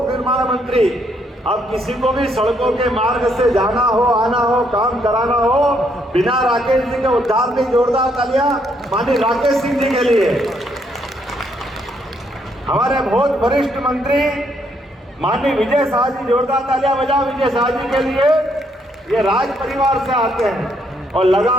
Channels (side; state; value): both; normal; correlation 0.72